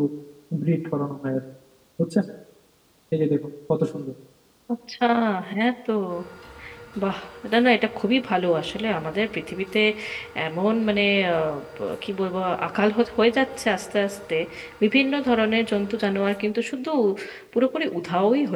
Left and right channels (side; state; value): both; identical; correlation 1.00